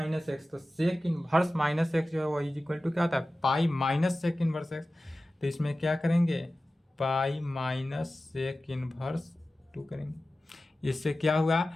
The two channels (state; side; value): normal; both; correlation 0.95